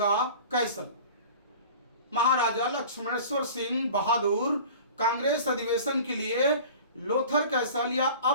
कैसल। महाराजा लक्ष्मणेश्वर सिंह बहादुर कांग्रेस अधिवेशन के लिए लोथर कैसल या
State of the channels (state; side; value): inverted; both; correlation -0.41